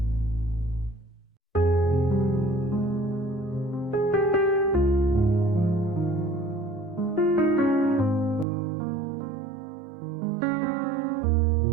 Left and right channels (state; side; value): drops out; left; at 8.5 s